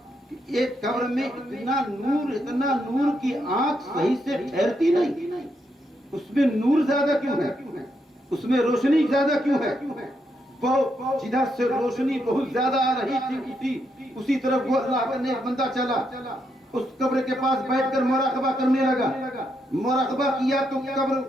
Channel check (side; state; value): both; normal; correlation 0.80